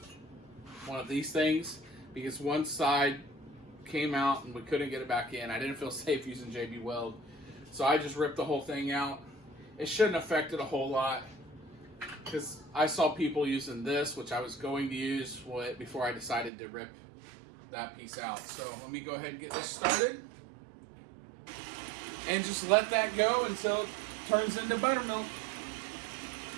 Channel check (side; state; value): left; drops out; at 16.5 s